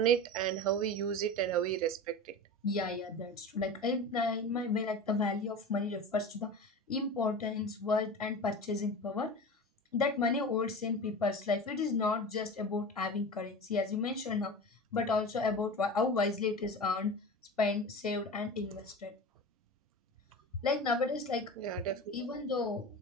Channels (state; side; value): normal; both; correlation 0.31